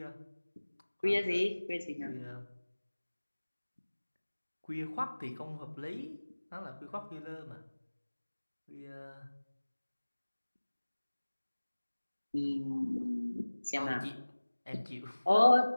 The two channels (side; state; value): both; inverted; correlation -1.00